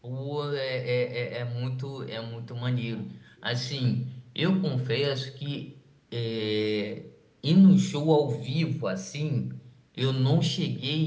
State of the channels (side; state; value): both; identical; correlation 1.00